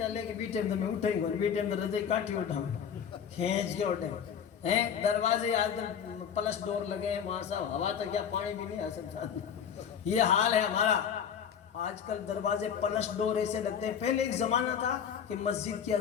گی, بی ٹائم میں اٹھیں گے, بی ٹائم میں رضے کاٹی اٹھاؤں کھینچ کے اٹھیں ہیں. دروازے آج پلس ڈور لگے ہیں وہاں صاحب, ہوا تو کیا پانی بھی نہیں آ سکتا. یہ حال ہے ہمارا. آج کل دروازے پلس ڈور ایسے لگتے ہیں. پہلے ایک زمانہ تھا کہ مسجد کی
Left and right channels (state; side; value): quieter; right; 7.9 dB